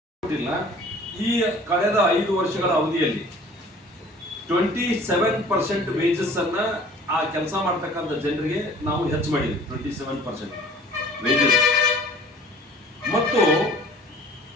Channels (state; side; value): normal; both; correlation 0.49